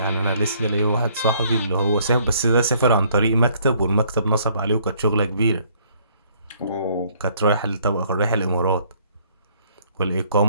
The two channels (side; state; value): both; inverted; correlation -0.63